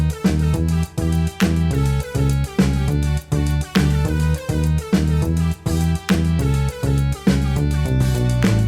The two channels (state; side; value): identical; both; correlation 1.00